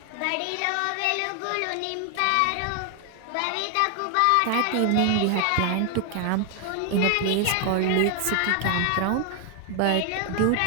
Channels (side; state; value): both; different; correlation 0.00